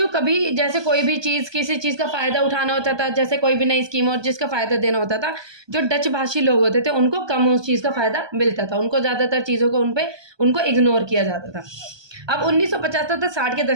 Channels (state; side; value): late; left; 1.2 ms